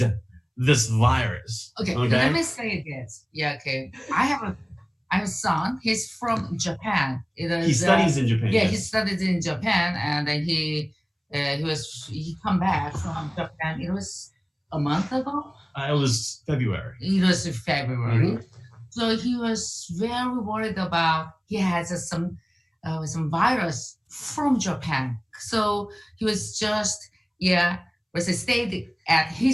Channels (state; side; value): identical; both; correlation 1.00